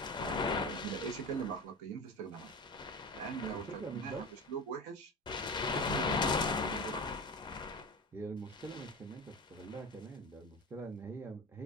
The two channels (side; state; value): both; normal; correlation 0.28